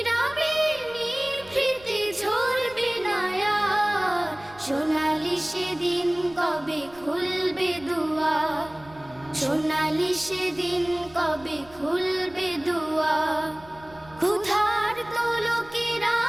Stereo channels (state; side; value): noise; right; rumble, 23 dB below the sound